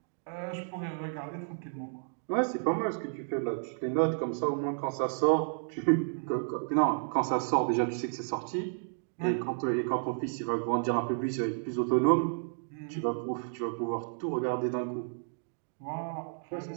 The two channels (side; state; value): left; silent; digital silence